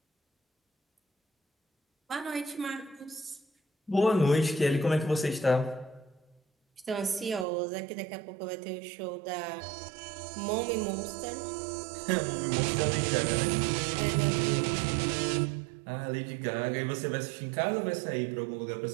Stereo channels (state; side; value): drops out; left; at 7.5 s